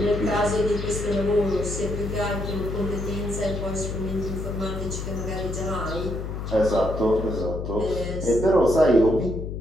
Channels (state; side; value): noise; left; hum, 5 dB below the sound